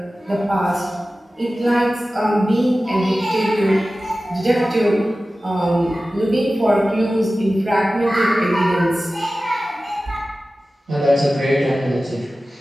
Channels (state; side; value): normal; both; correlation 0.95